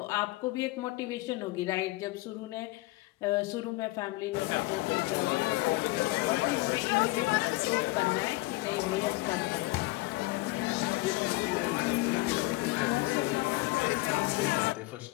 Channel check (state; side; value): quieter; right; 20.9 dB